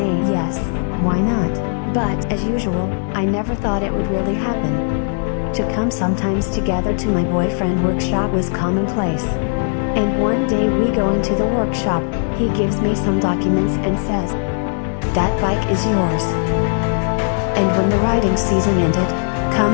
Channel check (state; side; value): silent; right; 66 dB below the other